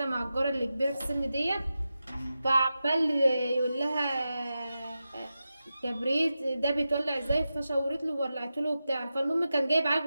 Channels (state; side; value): inverted; both; correlation -0.91